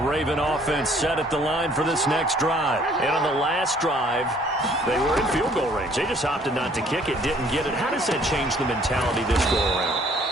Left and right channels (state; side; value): normal; both; correlation 0.59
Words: offense set at the line for this next drive. And on the last drive, they were in field goal range. They just opted not to kick it, didn't get it. How does that change the mentality this go around?